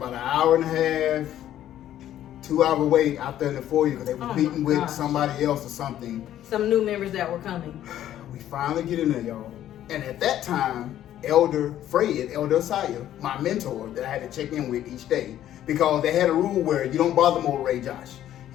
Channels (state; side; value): quieter; right; 11.9 dB